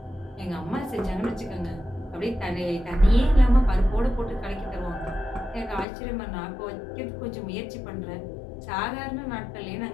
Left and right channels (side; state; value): right; drops out; at 5.9 s